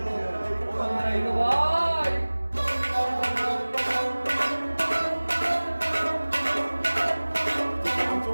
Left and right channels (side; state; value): both; inverted; correlation -1.00